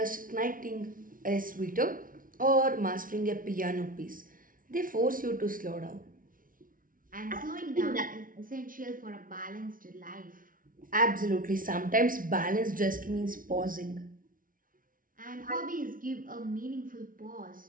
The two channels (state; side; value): late; left; 0.40 ms